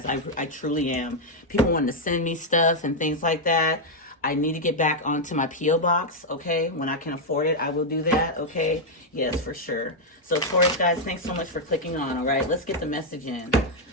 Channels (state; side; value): normal; both; correlation -0.01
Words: I truly am. People wanting to send me stuff and things like that. I need to get back onto my P.O. box, okay? When I can afford it, I will do that, okay? Yes, for sure. So, Taurus, guys, thanks so much for clicking on, all right? Let's get the message in,